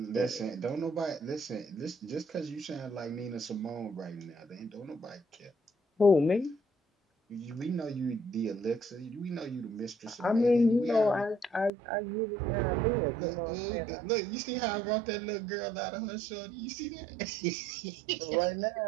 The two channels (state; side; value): drops out; left; at 11.7 s